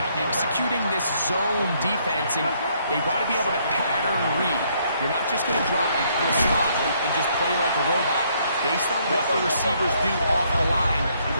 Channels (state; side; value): inverted; both; correlation -0.69